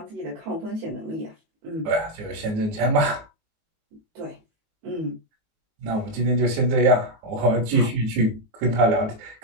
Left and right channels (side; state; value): left; late; 19 ms